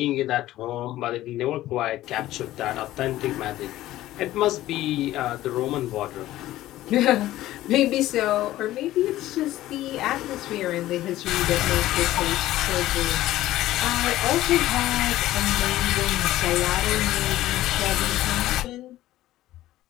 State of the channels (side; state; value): right; quieter; 15.1 dB